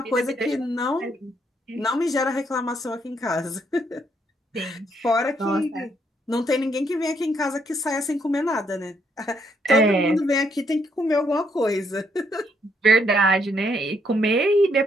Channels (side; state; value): both; normal; correlation 0.73